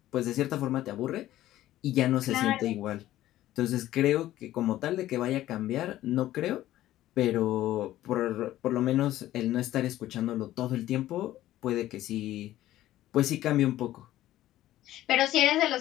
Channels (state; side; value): quieter; right; 14.3 dB